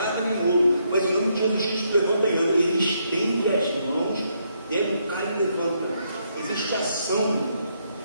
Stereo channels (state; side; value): inverted; both; correlation -0.75